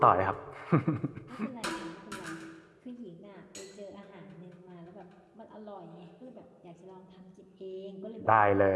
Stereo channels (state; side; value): identical; both; correlation 1.00